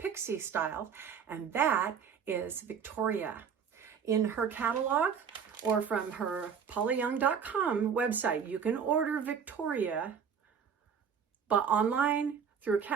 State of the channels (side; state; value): left; quieter; 7.0 dB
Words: style, and that is Victoria. In her catalog or from her paulayoung.com website, you can order Victoria but online through a